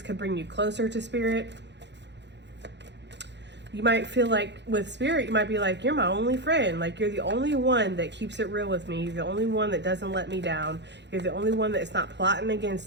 could bring you closer to spirit. You might feel like with spirit, you might be like, you're my only friend. Like you're the only one that keeps it real with me. You're the only one that doesn't let me down. You're the only one that's not plotting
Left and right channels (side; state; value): left; late; 0.51 ms